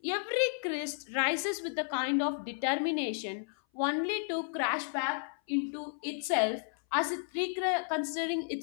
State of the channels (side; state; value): right; silent; 56 dB below the other